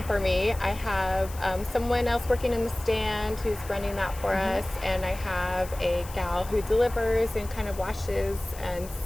for me. I have someone else working in the stand who's running that for us, and I have a gal who delivers and kind of washes and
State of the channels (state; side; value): noise; left; hiss, 16 dB below the sound